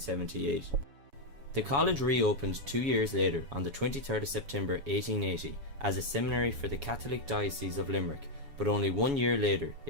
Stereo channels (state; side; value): late; left; 7.1 ms